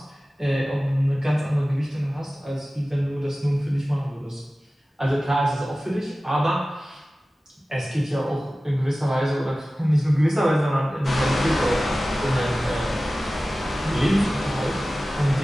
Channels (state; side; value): normal; both; correlation 0.96